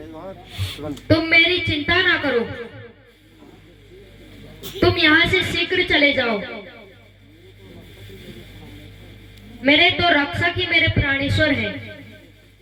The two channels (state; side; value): identical; both; correlation 1.00